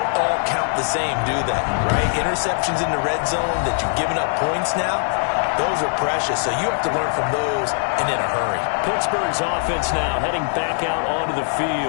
all count the same, do they? Right? Interceptions in the red zone that you've given up points now, those are precious, so you have to learn from those and in a hurry. Pittsburgh's offense now heading back out onto the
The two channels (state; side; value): silent; right; digital silence